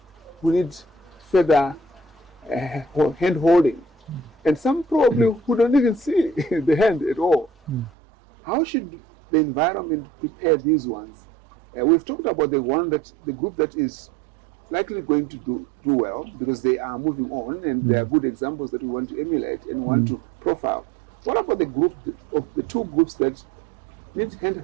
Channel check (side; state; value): left; drops out; at 7.9 s